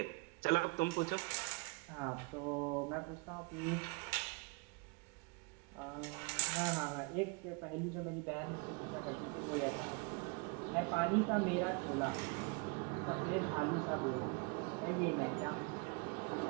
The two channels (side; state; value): left; quieter; 30.0 dB